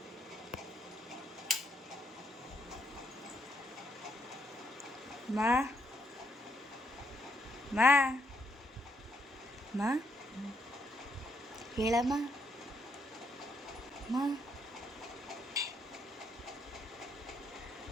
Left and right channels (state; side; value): normal; both; correlation 0.75